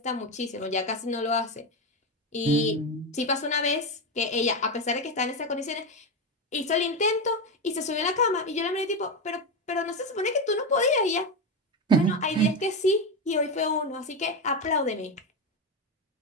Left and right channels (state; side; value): normal; both; correlation 0.13